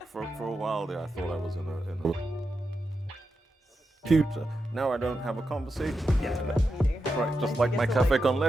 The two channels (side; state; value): both; normal; correlation 0.88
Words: For a while there, I thought I was in a computer. Now I don't have a conversation. Yeah. Meeting her. Right, just And like she my gets to, cafe con